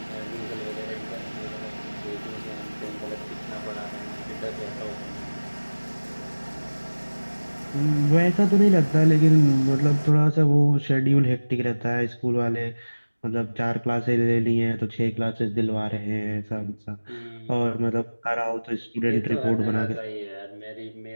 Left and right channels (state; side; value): inverted; both; correlation -1.00